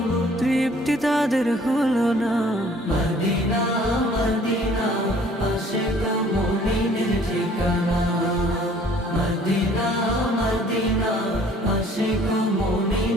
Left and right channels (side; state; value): both; normal; correlation 0.55